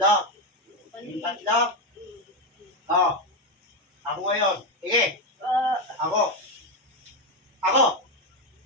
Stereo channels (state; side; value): normal; both; correlation 0.09